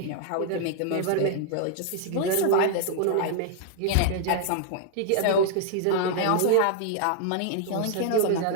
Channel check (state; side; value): different; both; correlation -0.01